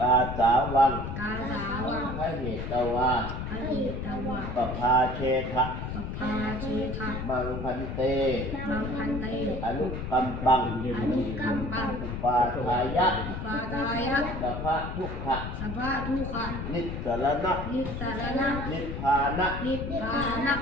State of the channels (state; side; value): noise; left; rumble, 5 dB below the sound